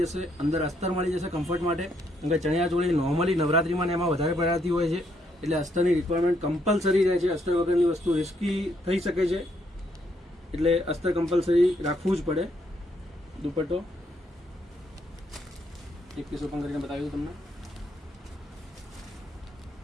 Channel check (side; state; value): both; normal; correlation 0.73